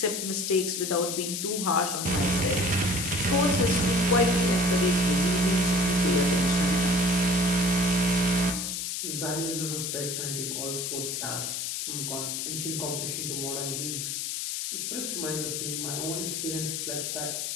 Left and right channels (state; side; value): noise; left; hiss, 3 dB below the sound